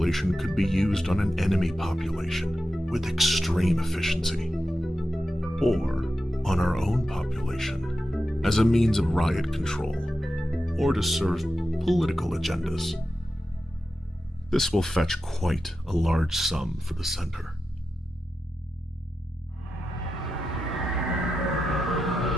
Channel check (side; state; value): both; normal; correlation 0.90